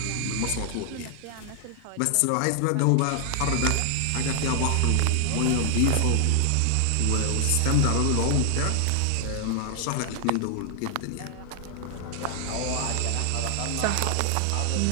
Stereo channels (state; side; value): different; both; correlation 0.00